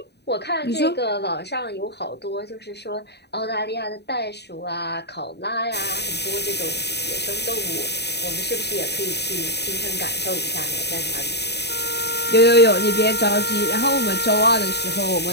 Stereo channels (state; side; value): late; right; 0.49 ms